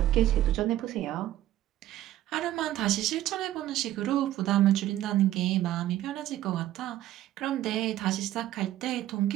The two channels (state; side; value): quieter; left; 13.6 dB